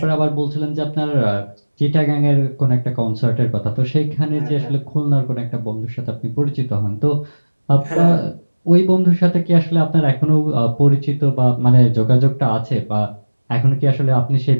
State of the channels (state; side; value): inverted; both; correlation -1.00